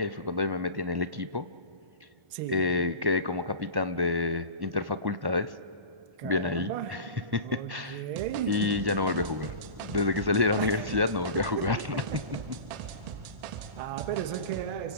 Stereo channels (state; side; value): late; left; 1.1 ms